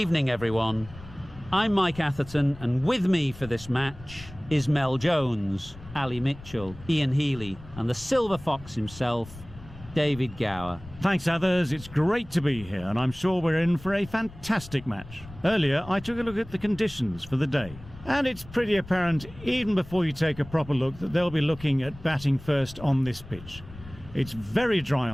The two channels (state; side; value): noise; left; rumble, 17 dB below the sound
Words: everyone. I'm Mike Atherton, and with me for this match is Mel Jones, Ali Mitchell, Ian Healy, and the Silver Fox himself, David Gower. Thanks, others. It's great to be here, and I'm sure we're in for a fantastic match. Earlier, I took a look at the conditions for the day, and it's pretty apparent, even before you take a proper look, that they'll be looking at batting first on this pitch. It's very dry